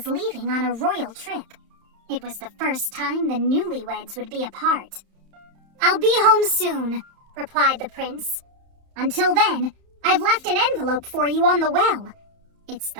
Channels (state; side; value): late; left; 31 ms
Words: leaving on a royal trip. It was the first time the newlyweds would be apart. "I'll be home soon," replied the prince. "Until then, I've left an envelope for you on the well. It's